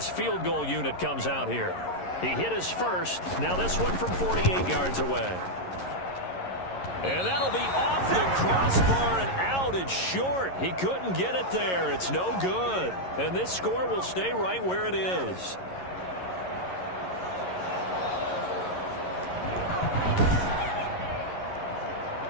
field goal unit comes out here. He hit his first. Now this one from 48 yards away. And that'll be off the crossbar and out. It's short. He couldn't get it there. It's no good. And this score will stay right where it is.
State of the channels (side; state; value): right; late; 11 ms